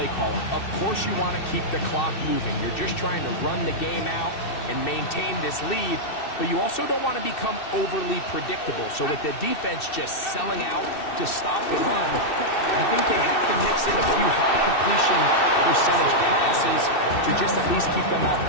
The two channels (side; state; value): right; late; 2.6 ms